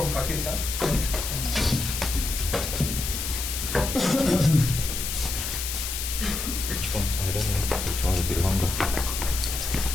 Pakistan. Which one? I don't know. Which one will be longer?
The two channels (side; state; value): left; noise; hiss, 4 dB below the sound